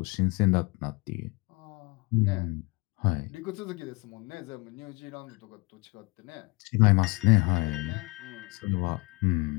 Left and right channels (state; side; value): quieter; right; 27.4 dB